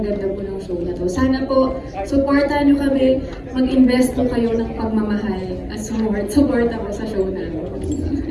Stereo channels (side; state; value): both; identical; correlation 1.00